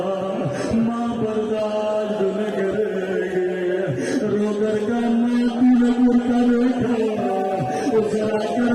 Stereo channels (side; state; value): both; identical; correlation 1.00